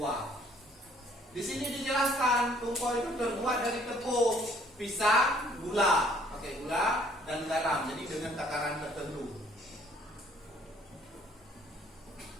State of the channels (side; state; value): both; normal; correlation 0.61